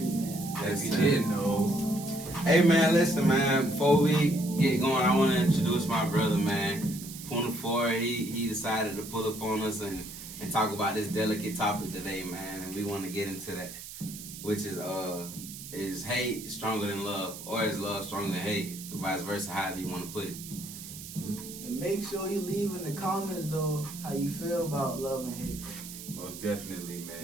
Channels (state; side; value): noise; right; hiss, 12 dB below the sound